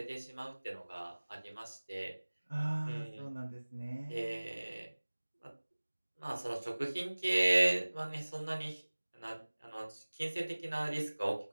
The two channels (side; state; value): both; inverted; correlation -1.00